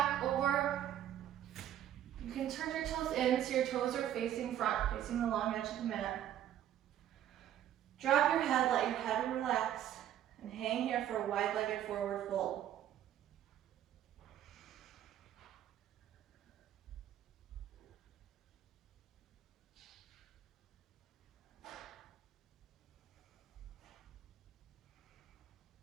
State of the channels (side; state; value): left; quieter; 11.2 dB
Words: over. You can turn your toes in so your toes are facing front, facing the long edge of the mat. Drop your head, let your head relax, and hang here for a wide-legged forward fold.